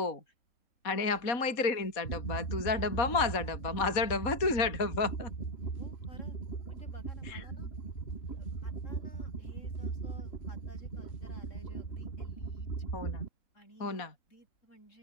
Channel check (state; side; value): late; right; 4.1 ms